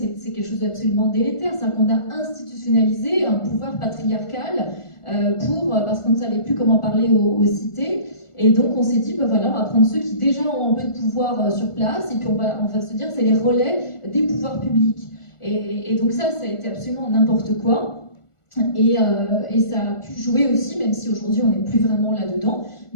quelque chose d'absolument délétère, c'est qu'on a institutionnalisé un pouvoir patriarcal parce qu'on ne savait plus comment parler aux cités. Et donc on s'est dit, voilà, on va prendre ceux qui déjà ont un peu de pouvoir sur place, et puis on va se dire, c'est les relais des pouvoirs publics. Et donc ça a été absolument n'importe quoi. Et ça a pu jouer aussi, même si aujourd'hui on n'est plus vraiment là-dedans,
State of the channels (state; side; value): late; right; 1.4 ms